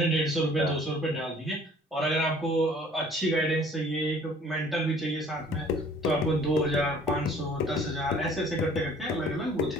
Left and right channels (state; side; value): normal; both; correlation 0.54